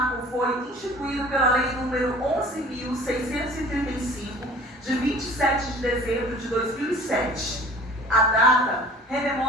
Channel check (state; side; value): normal; both; correlation 0.46